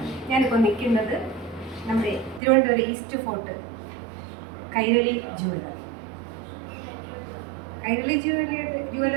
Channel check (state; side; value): drops out; left; at 2.4 s